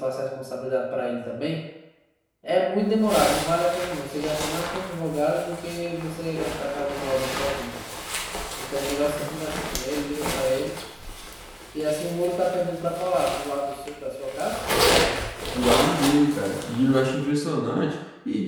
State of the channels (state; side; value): identical; both; correlation 1.00